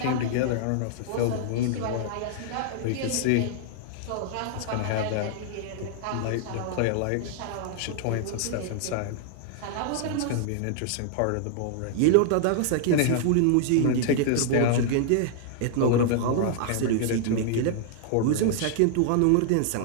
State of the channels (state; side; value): different; both; correlation -0.01